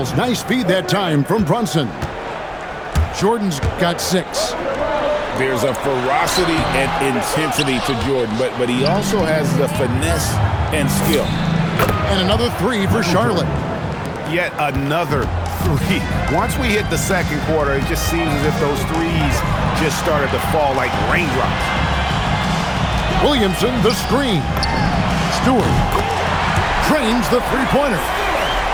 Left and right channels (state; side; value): identical; both; correlation 1.00